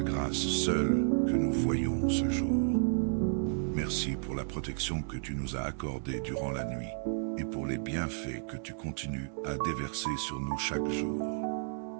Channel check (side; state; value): left; silent; 56 dB below the other